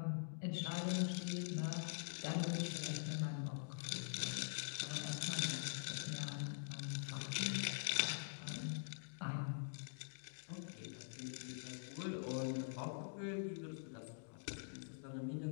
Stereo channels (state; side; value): silent; right; digital silence